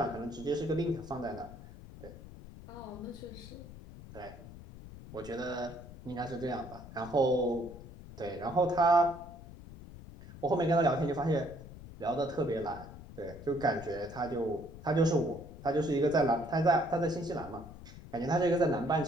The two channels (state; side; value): noise; left; rumble, 15 dB below the sound